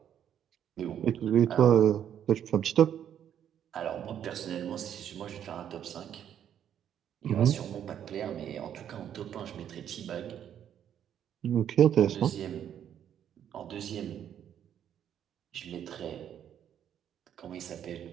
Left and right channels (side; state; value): left; quieter; 9.6 dB